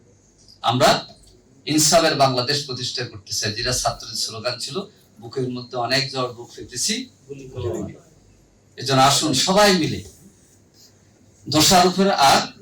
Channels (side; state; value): both; identical; correlation 1.00